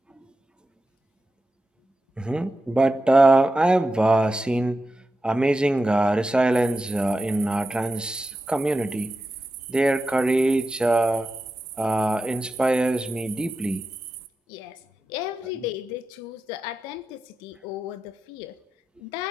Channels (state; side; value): normal; both; correlation 0.91